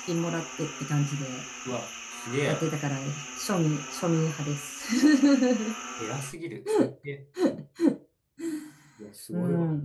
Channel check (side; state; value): both; identical; correlation 1.00